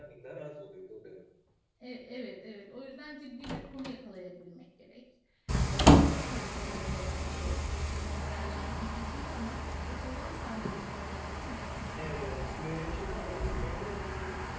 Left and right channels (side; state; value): both; identical; correlation 1.00